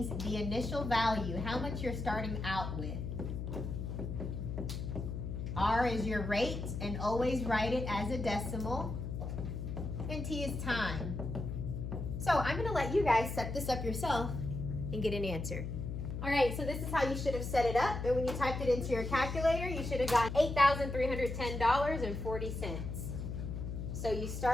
the initial value, how much you're starting out with. R is your rate, and always write it as a decimal. And T is time. So I'm going to let you guys set this up yourself and get an answer. All right, so this is how you should have set it up. And when you typed it into your calculator, you should have gotten $8,310.40. So you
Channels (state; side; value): noise; left; hum, 5 dB below the sound